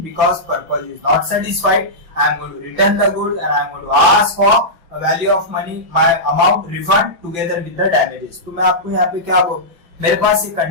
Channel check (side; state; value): left; late; 5.9 ms